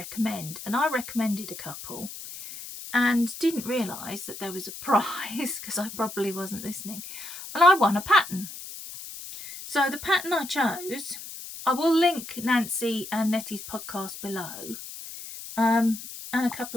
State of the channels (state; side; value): noise; left; hiss, 11 dB below the sound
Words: And I recommended a couple and didn't realise that there was a prize because I probably wasn't listening, and I won a pattern. So the pattern I chose, I will link Nancy and Nettie's podcast below, and a